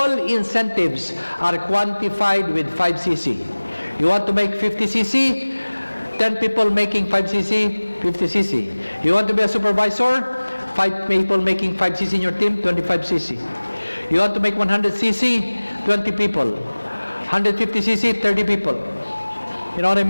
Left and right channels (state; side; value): inverted; both; correlation -1.00